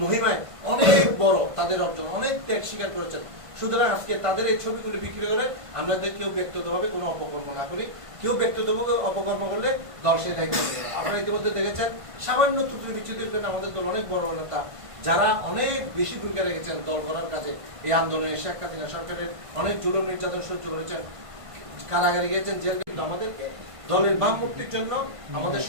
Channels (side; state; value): left; late; 1.5 ms